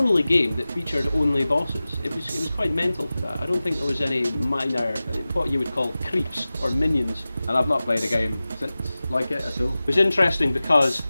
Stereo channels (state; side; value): inverted; both; correlation -0.96